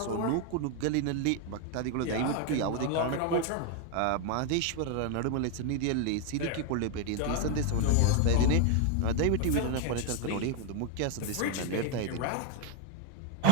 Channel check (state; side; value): different; both; correlation 0.01